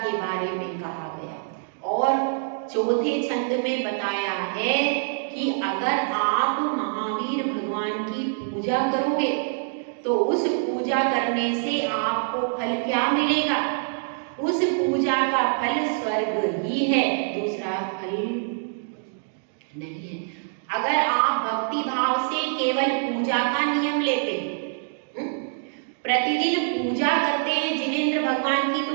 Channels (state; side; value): silent; left; digital silence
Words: बारे में कहा गया। और चौथे छंद में बताया है कि अगर आप महावीर भगवान की पूजा करोगे तो उस पूजा करने से आपको फल क्या मिलेगा, उस पूजा का फल स्वर्ग ही है, दूसरा फल नहीं है। अगर आप भक्ति भाव से केवल पूजा का नियम लेते हैं, प्रतिदिन पूजा करते हैं जिनेंद्र भगवान की,